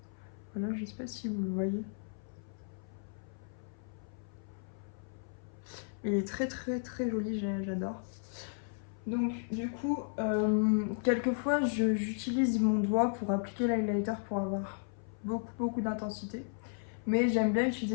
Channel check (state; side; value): silent; right; 55 dB below the other